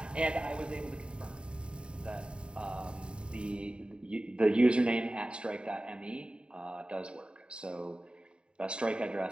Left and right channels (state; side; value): late; left; 0.052 ms